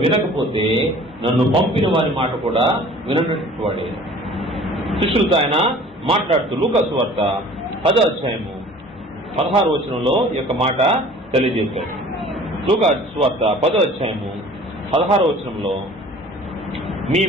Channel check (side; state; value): both; normal; correlation 0.47